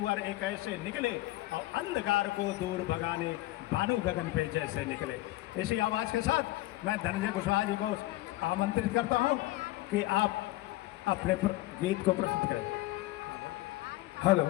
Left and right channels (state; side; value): quieter; right; 17.7 dB